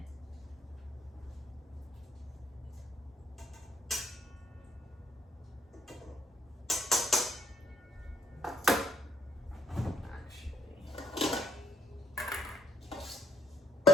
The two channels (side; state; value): both; normal; correlation 0.69